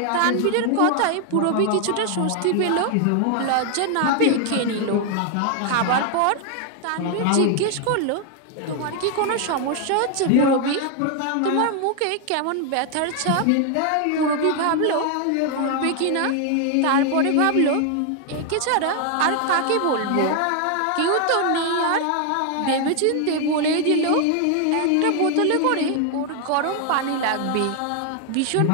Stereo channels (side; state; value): both; different; correlation 0.00